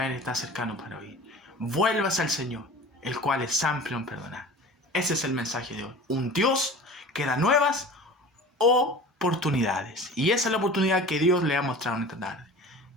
Él está cercano para oír. Vuélvase al Señor, el cual es amplio en perdonar. Ese es el mensaje de hoy. Un Dios que da nuevas oportunidades. Y esa es la oportunidad que Dios le ha mostrado en esta tarde.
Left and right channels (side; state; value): both; normal; correlation 0.39